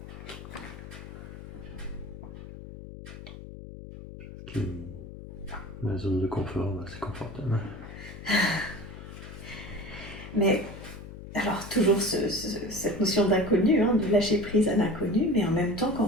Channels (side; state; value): left; noise; hum, 13 dB below the sound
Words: La zone de confort, c'est confortable. Mais alors toujours cette notion d'inconnu, hein, de lâcher prise à l'inconnu, mais en même temps quand